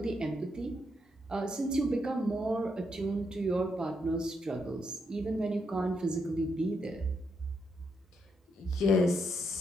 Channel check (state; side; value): normal; both; correlation 0.79